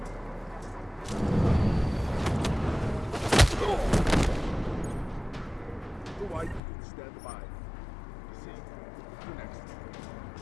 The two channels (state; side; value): drops out; right; at 6.6 s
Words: Why you can stand by. See, you next.